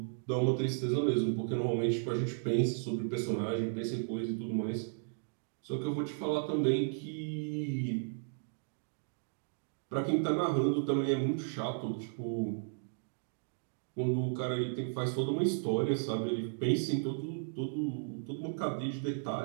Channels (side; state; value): left; silent; digital silence